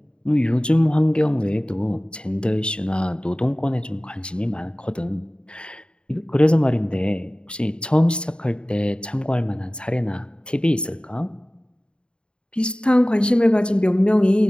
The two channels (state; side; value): late; right; 0.052 ms